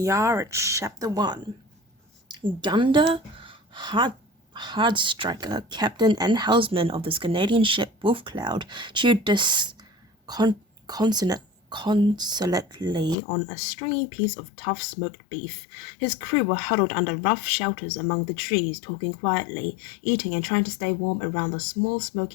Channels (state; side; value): drops out; right; at 13.2 s